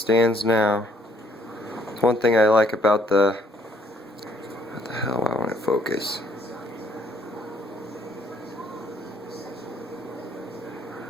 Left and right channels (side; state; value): both; normal; correlation 0.65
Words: now. One thing I like about the... What the hell, I want to focus.